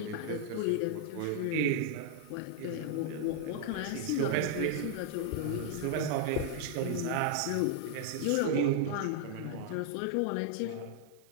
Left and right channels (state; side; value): different; both; correlation -0.01